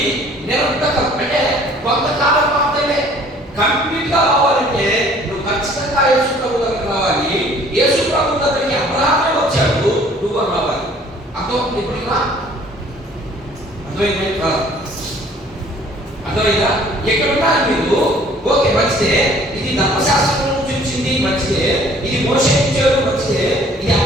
నిరంతరం అంటే కొంతకాలం మాత్రమే. కంప్లీట్ గా రావాలంటే నువ్వు ఖచ్చితంగా యేసు ప్రభు దగ్గరికి రావాలి. యేసు ప్రభు దగ్గరికి అబ్రహామే వచ్చాడు, నువ్వు రావాలి. అర్థం ఇప్పుడు అర్థమైందా? అర్థమైందా? ఎక్కడున్నా మీరు ఓకే మంచిదే, ఇది ధర్మశాస్త్రం నుంచి వచ్చింది మంచిదే, ఇది మోషే ఇచ్చాడు మంచిదే, ఇది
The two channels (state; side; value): normal; both; correlation 0.55